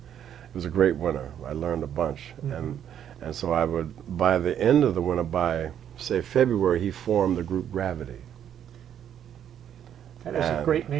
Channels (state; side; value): quieter; left; 9.6 dB